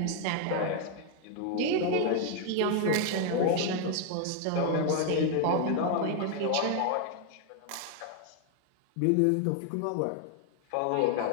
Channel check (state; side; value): different; both; correlation 0.00